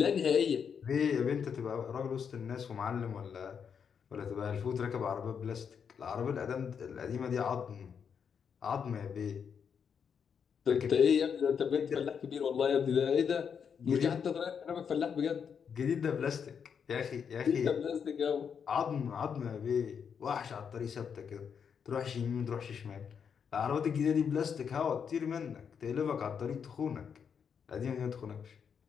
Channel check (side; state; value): right; quieter; 7.0 dB